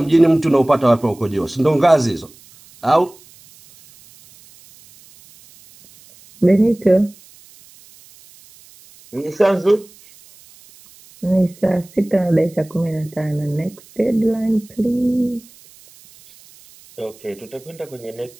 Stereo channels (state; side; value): noise; right; hiss, 25 dB below the sound